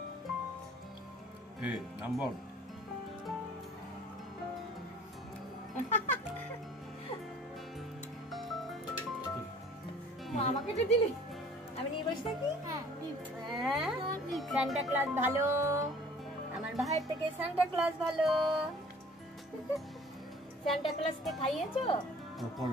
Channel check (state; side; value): normal; both; correlation 0.50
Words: নাম্বার আমাকে তো দিলি, আমি নিয়ে বসে থাকি। সান্টা ক্লজ ভালো, আমার ভাইয়ের থেকে সান্টা ক্লজ ভালো। সান্টা ক্লজকে খাইয়েছো?